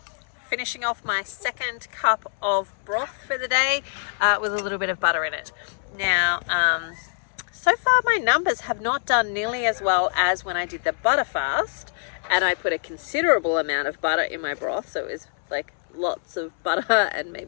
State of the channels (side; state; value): right; silent; 62 dB below the other